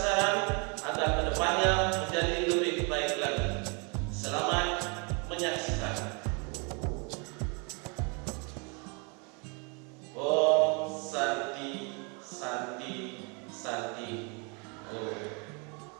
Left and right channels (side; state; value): left; quieter; 33.8 dB